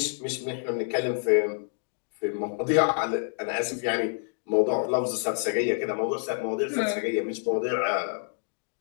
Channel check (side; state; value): right; silent; digital silence